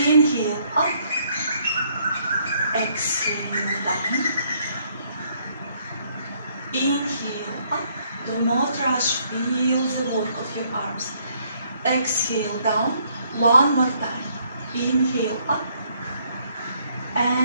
up. Exhale, down. Inhale up, do not rush, feel the work of your arms. Exhale down, one more time. Inhale up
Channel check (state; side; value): inverted; both; correlation -0.68